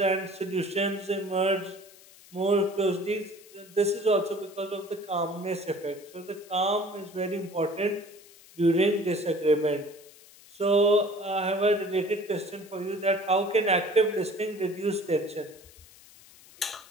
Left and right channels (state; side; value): noise; left; hiss, 23 dB below the sound